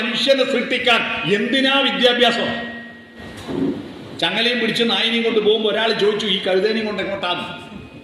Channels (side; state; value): both; identical; correlation 1.00